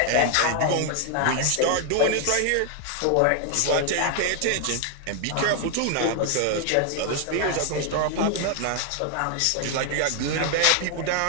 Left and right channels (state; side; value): different; both; correlation 0.00